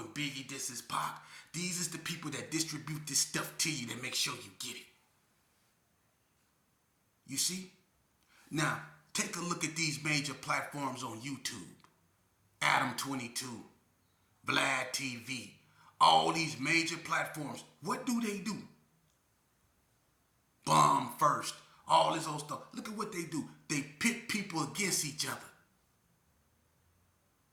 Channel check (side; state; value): both; identical; correlation 1.00